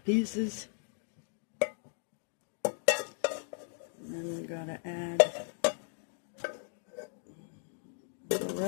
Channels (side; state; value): right; silent; digital silence